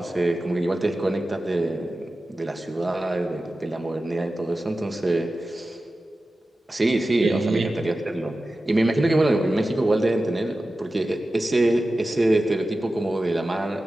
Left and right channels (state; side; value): normal; both; correlation 0.94